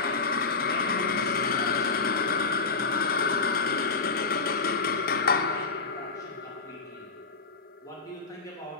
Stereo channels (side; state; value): right; quieter; 4.3 dB